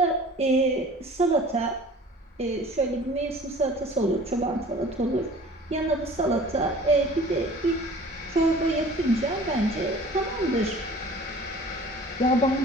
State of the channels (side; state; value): both; normal; correlation 0.46